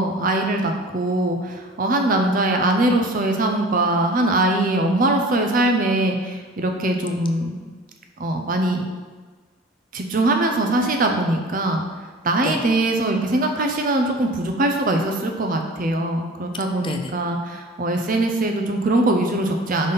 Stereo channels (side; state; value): both; normal; correlation 0.42